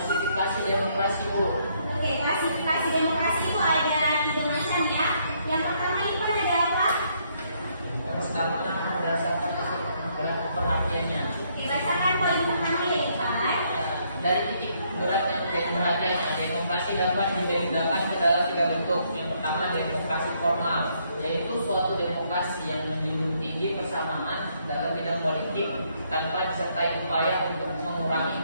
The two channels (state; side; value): inverted; both; correlation -0.71